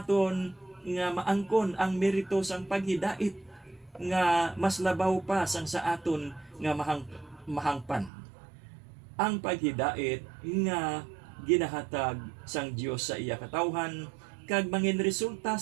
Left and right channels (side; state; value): left; drops out; at 8.1 s